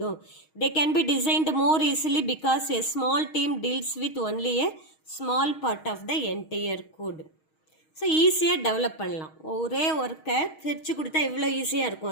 They can be designed more easily because a small team deals with only a small part of the entire code. So ஈஸியாக டெவலப் பண்ணலாம். ஒரே ஒர்க்கை பிரித்து கொடுத்தா எவ்வளோ ஈஸியாக இருக்கும்,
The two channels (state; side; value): late; right; 6.4 ms